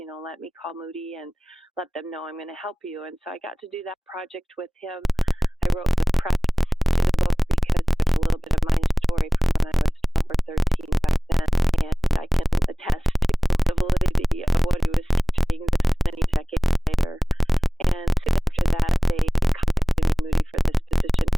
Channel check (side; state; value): both; normal; correlation 0.98